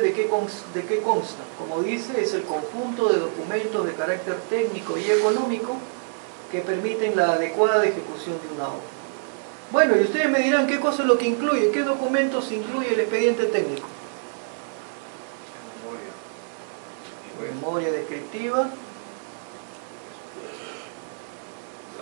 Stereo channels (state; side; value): silent; left; 61 dB below the other